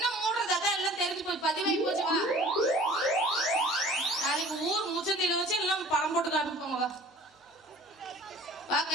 மூடுறது அதான் எல்லாம் தெரிஞ்சு போய் பதிவாகி போச்சு. வா நாளைக்கு ஊர் முச்சந்தில வச்சு எல்லாம் படம் போட்டு காமிப்பாங்க. வா வா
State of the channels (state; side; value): normal; both; correlation 0.47